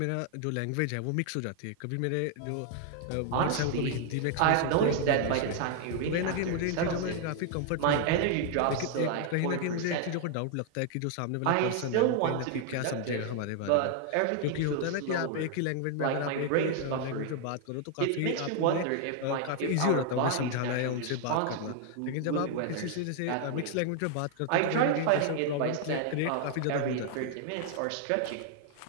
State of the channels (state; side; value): different; both; correlation 0.00